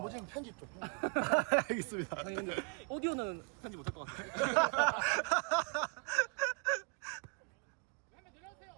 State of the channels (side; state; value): left; quieter; 34.8 dB